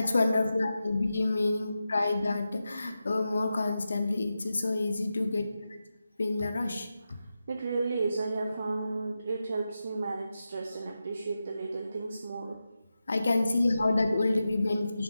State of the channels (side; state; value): both; inverted; correlation -0.91